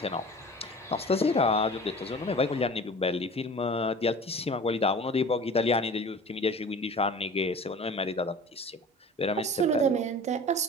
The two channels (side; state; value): both; normal; correlation 0.40